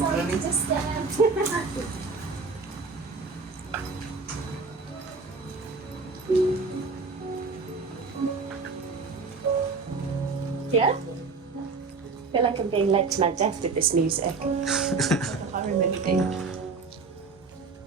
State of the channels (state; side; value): quieter; left; 4.4 dB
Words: to disturb. Yeah? I feel like I'm being led to my death with this music. I remember being.